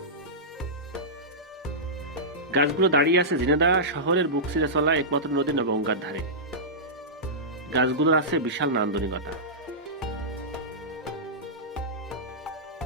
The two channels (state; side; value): normal; both; correlation -0.15